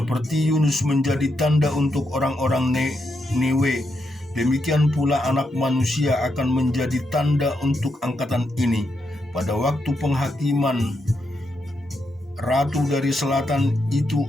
Yunus menjadi tanda untuk orang-orang Ninewe, demikian pula Anak Manusia akan menjadi tanda untuk angkatan ini. Pada waktu penghakiman, Ratu dari Selatan itu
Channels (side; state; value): both; normal; correlation 0.82